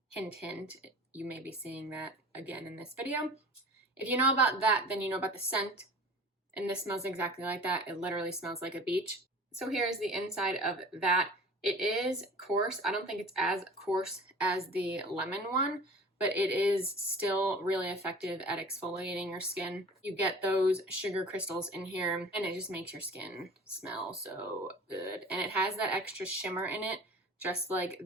hint, hint, you may be seeing that again in this video. If you know about that, then you know about the scent, and this smells exactly like that. It literally smells like a beach. So here's the inside of that. It is coarse. I don't think it's as coarse as the lemon one, but it is still really effective at exfoliating your skin. You get those sugar crystals in here, and it just makes your skin smell so good. And it has that extra shimmer in it, just like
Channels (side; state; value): both; normal; correlation 0.42